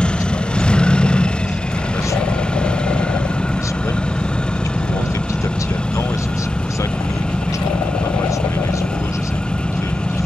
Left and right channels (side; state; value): both; normal; correlation 0.92